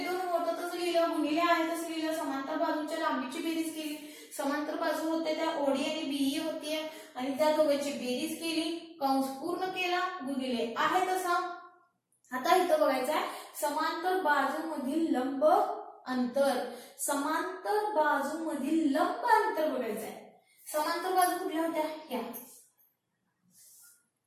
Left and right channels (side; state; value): both; identical; correlation 1.00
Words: होतं तसं लिहिलं, गुणिले आहे तसं लिहिलं, समांतर बाजूच्या लांबीची बेरीज केली. समांतर बाजू होते त्या OD आणि BE होती आणि त्या दोघांची बेरीज केली, कंस पूर्ण केला, गुणिले आहे तसा. आता इथं बघायचं आहे समांतर बाजूमधील लंब अंतर. समांतर बाजूमधील लंब अंतर बघायचं आहे. समांतर बाजू कुठल्या होत्या? ह्या.